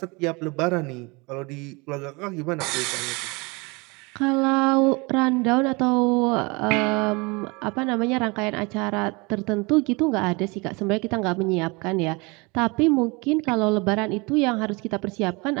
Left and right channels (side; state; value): left; quieter; 27.3 dB